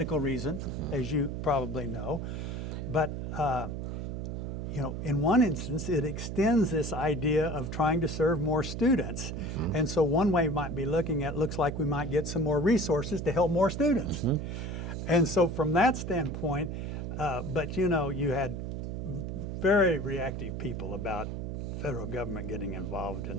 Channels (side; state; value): right; noise; hum, 4 dB below the sound